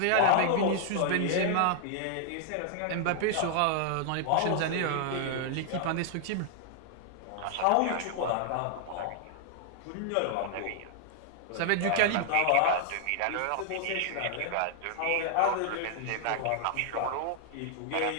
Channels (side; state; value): both; different; correlation 0.00